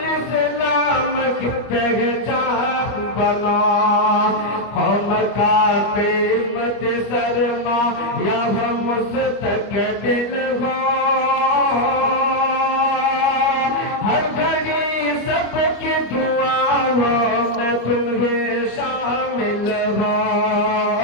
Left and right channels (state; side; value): late; right; 25 ms